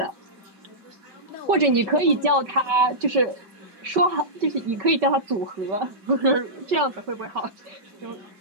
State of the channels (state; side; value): late; left; 5.2 ms